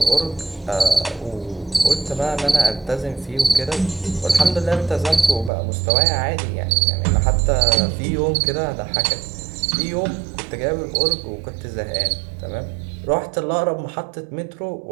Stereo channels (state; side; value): drops out; left; at 5.5 s